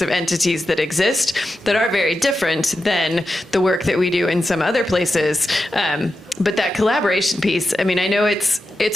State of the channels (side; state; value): both; normal; correlation 0.90